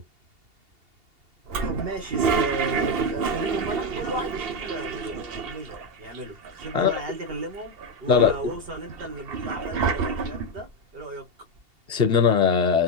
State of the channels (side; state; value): left; late; 2.8 ms